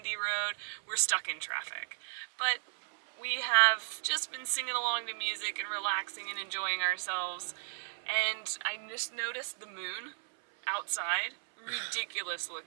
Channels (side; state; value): left; silent; 55 dB below the other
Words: road, we're stuck in traffic. But we have just been singing along to music and relaxing and enjoying ourselves, and I just noticed the moon outside, ridiculous